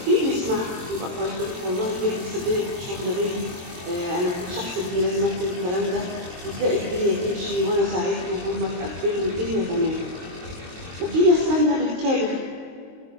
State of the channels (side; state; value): left; late; 23 ms